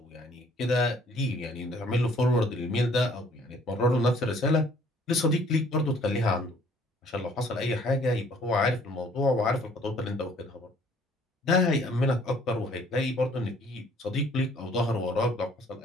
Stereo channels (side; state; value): both; normal; correlation 0.59